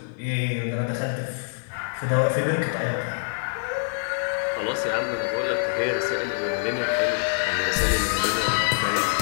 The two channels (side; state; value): right; silent; digital silence